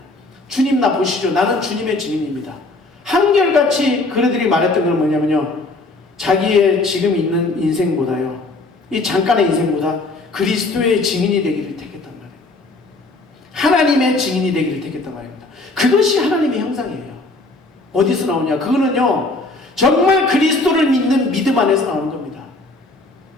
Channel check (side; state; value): right; quieter; 3.1 dB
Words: 주님 나 보시죠. 나는 주님의 증인입니다. 한결같이 그들이 말했던 건 뭐냐면요 자기의 지금 있는 인생보다요 이 잠깐의 인생보다 그리스도의 증인이 되기를 택했단 말이에요. 하나님의 증인이 되기를 택했단 말입니다. 그것이 하나님의 형상이에요. 어디서 나오냐? 그거는요 정말 그리스도를 믿는 믿음 안에서 나오는 겁니다.